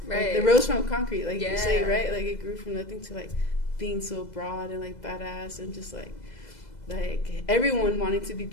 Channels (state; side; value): late; right; 2.0 ms